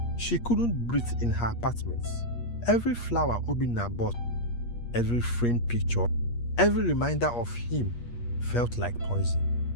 She couldn't breathe in her apartment. Every flower Obinna bought, every framed picture, every reminder of him felt like poison.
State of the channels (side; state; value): right; late; 8.4 ms